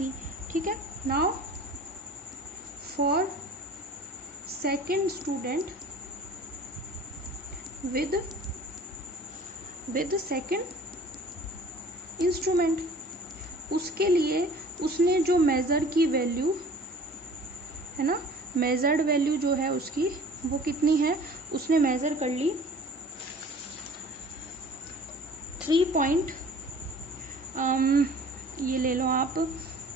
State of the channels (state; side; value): normal; both; correlation 0.47